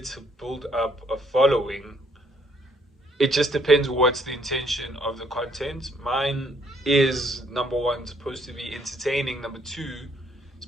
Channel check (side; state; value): both; normal; correlation 0.67